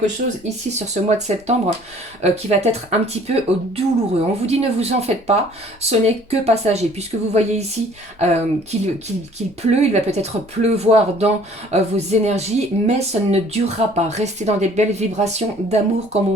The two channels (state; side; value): normal; both; correlation 0.54